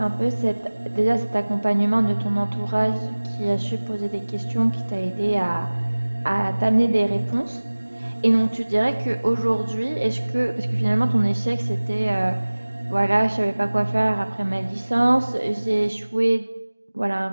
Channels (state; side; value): inverted; both; correlation -1.00